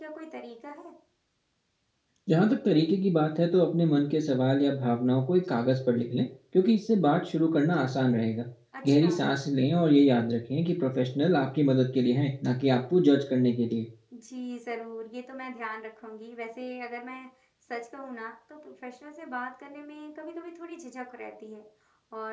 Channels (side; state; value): both; identical; correlation 1.00